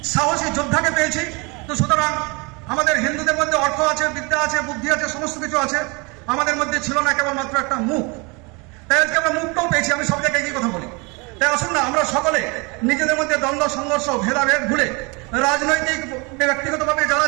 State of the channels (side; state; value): left; quieter; 28.8 dB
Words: সাহসী যোদ্ধাকে পেয়েছি। তো সুতরাং আমাদের হিন্দুদের মধ্যে অর্থ আছে, বিদ্যা আছে, বুদ্ধি আছে, সমস্ত কিছু আছে, আমাদের মধ্যে ছিল না কেবলমাত্র একটা মুখ। তাই আজকে আমরা মুখটাও পেয়েছি। আমি সব জায়গায় একই কথা বলি। তাই আসুন না আমরা সকলে নিজেদের মধ্যে দ্বন্দ্ব সংঘর্ষ ভেদাভেদ ভুলে রাজনৈতিক ব্যক্তিগতভাবে যারা